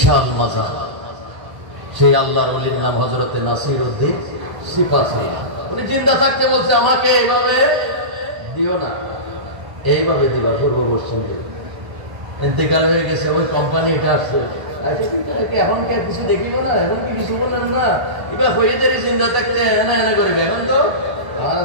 মাজার। সেই আল্লাহর ওলির নাম হযরতে নাসিরউদ্দিন সিপাহী। উনি জিন্দা থাকতে বলছে আমাকে এইভাবে দিও না, এইভাবে দিবা পূর্ব পশ্চিম দিকে। ইন্তেকাল হয়ে গেছে, ওই কোম্পানি এটা আসছে। এখন কিছু দেখিব না, এখন কি কিছু বলেন না, এবার হয়ে যাবে চিন্তা থাকতে এনা এনা করবে। এখন তো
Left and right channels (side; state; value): left; late; 1.0 ms